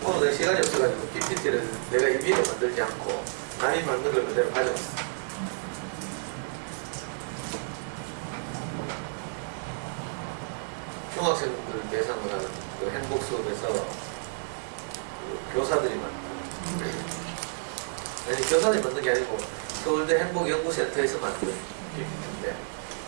오늘 내가 시간이 없어가지고 PPT를 내가 임의로 만들지 않고 남이 만든 걸 그대로 가져왔어. 중학생들 대상으로 하는 그 행복 수업에서 그 교사들이 만든, 아니 교사들이 만든 게 아니고 서울대 행복연구센터에서 만든 PPT인데,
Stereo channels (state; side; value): silent; left; digital silence